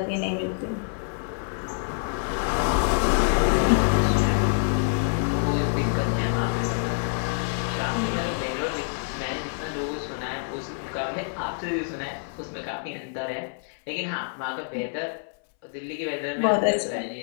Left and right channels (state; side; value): silent; right; 61 dB below the other